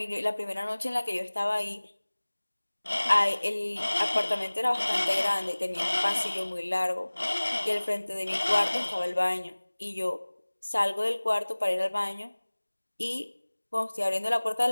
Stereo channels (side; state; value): both; inverted; correlation -1.00